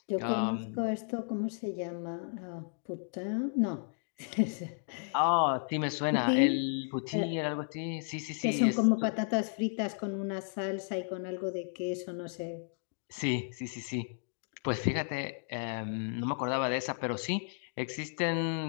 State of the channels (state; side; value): silent; right; digital silence